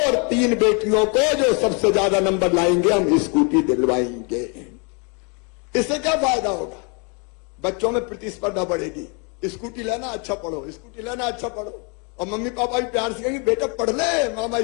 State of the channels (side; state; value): right; quieter; 34.8 dB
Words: और 3 बेटियों को जो सबसे ज्यादा नंबर लाएंगे हम स्कूटी दिलवाएंगे। इससे क्या फायदा होगा? बच्चों में प्रतिस्पर्धा बढ़ेगी। स्कूटी लेना, अच्छा पढ़ो, स्कूटी लेना, अच्छा पढ़ो। और मम्मी पापा भी प्यार से कहेंगे बेटा पढ़ ले, मामा